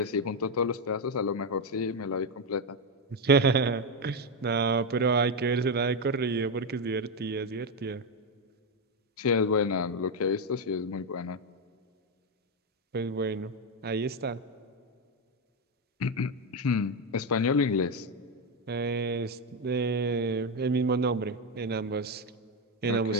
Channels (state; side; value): normal; both; correlation 0.07